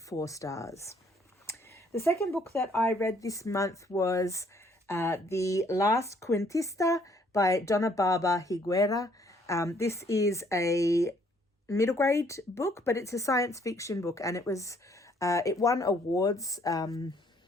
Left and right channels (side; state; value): both; normal; correlation 0.64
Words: 4 stars. The second book that I read this month was the Last Quintista by Donna, Barba, Higuera. This is a middle grade book, but it's a science fiction book, and it won awards.